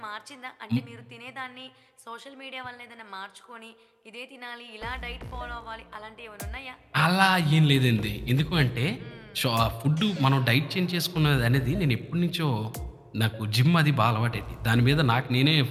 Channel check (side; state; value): both; identical; correlation 1.00